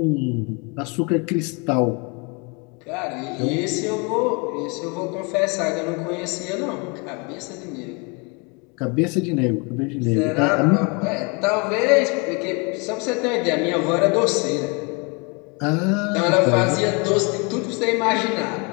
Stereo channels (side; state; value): right; quieter; 31.6 dB